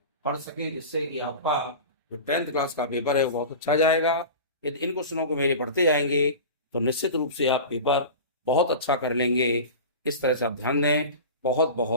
पढ़ सकें, जिससे कि आपका जो 10th क्लास का पेपर है वो बहुत अच्छा जाएगा। यदि इन क्वेश्चनों को मेरे पढ़ते जाएंगे तो निश्चित रूप से आप पेपर बहुत अच्छा कर लेंगे। इस तरह से आप ध्यान दें। बहुत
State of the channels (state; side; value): inverted; both; correlation -0.32